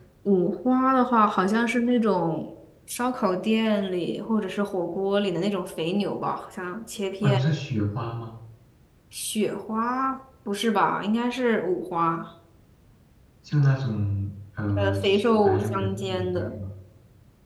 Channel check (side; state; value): both; identical; correlation 1.00